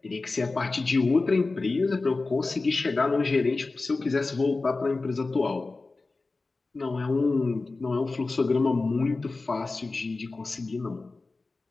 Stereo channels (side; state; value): right; quieter; 3.6 dB